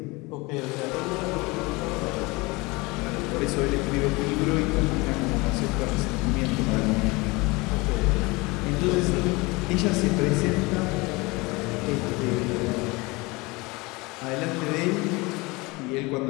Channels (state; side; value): quieter; right; 24.4 dB